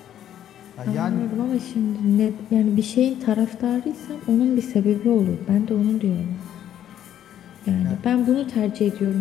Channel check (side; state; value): right; quieter; 10.8 dB